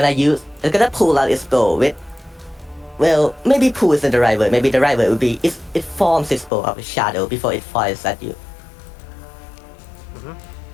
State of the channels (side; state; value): right; drops out; at 6.5 s